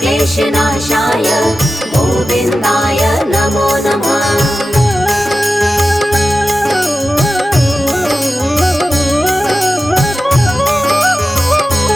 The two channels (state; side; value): normal; both; correlation 0.93